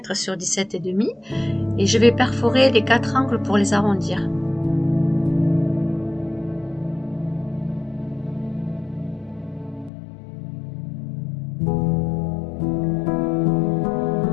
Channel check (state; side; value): drops out; right; at 9.9 s